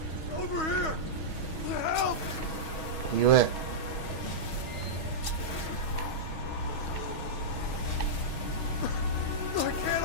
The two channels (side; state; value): right; late; 6.3 ms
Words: Over here! Help! You at? I can't